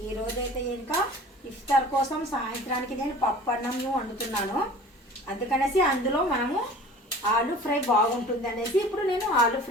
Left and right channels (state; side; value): normal; both; correlation 0.43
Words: ఈరోజైతే ఇంకా ఇఫ్తార్ కోసం సాయంత్రానికి నేను పప్పు అన్నం వండుతున్నాను. అందుకనేసి అందులో మనము ఆలు ఫ్రై బాగుంటుంది అనేసి ఇప్పుడు నేను ఆలు